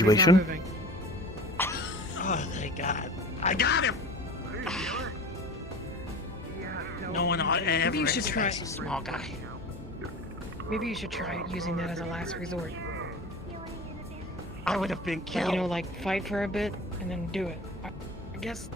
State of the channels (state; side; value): normal; both; correlation 0.37